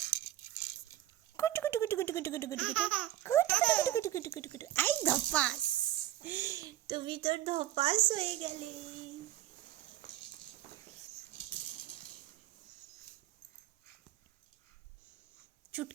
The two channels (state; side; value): quieter; left; 13.7 dB